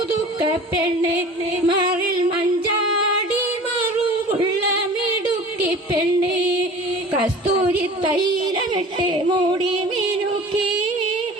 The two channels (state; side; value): normal; both; correlation 0.41